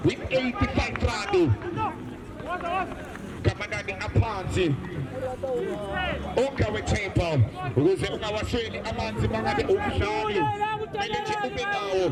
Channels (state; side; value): identical; both; correlation 1.00